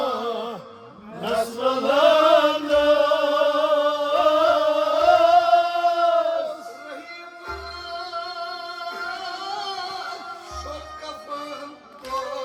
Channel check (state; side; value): identical; both; correlation 1.00